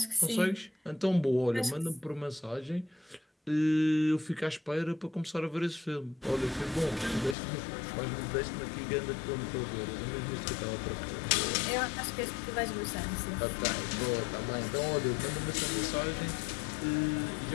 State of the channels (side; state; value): right; drops out; at 7.4 s